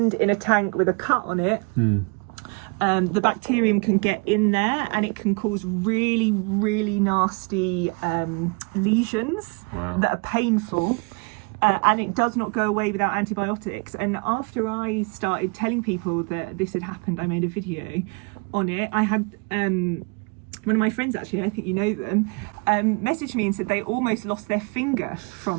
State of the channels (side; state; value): left; quieter; 32.7 dB